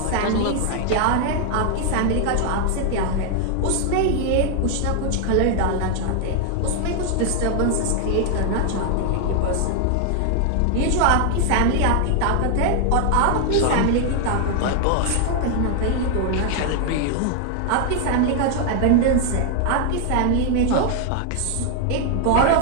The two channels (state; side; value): different; both; correlation 0.00